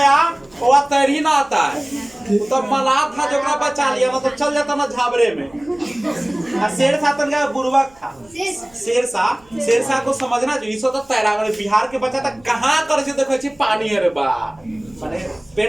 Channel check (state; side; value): noise; right; hum, 29 dB below the sound